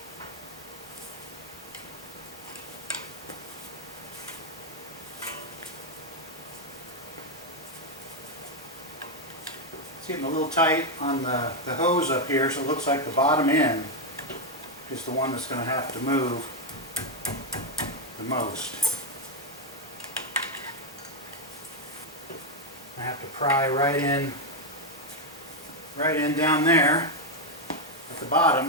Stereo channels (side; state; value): both; normal; correlation 0.03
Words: It's getting a little tight on the hose up here, so it looks like the bottom end is the one that's going to have to move the most. I have to pry right in down there at the bottom